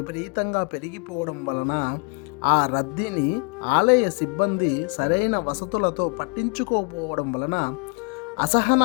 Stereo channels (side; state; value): right; quieter; 35.5 dB